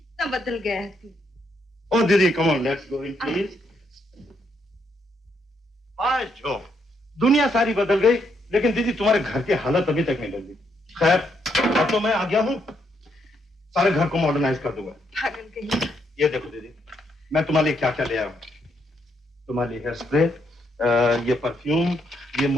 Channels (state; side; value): normal; both; correlation 0.76